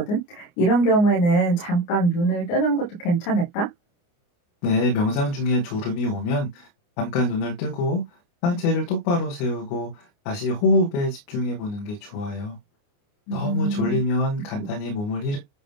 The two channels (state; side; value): late; right; 29 ms